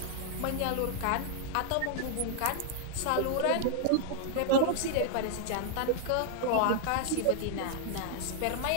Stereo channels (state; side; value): different; both; correlation 0.00